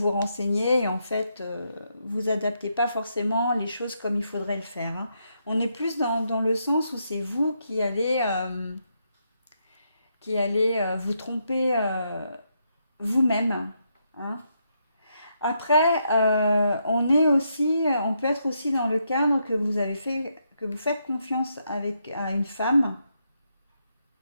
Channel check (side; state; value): both; inverted; correlation -0.79